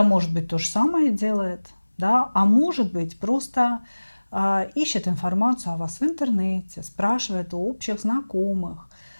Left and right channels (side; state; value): both; inverted; correlation -1.00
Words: может быть, то же самое делает, да, а может быть, просто ищет информацию о вас в интернете, спрашивает у общих знакомых.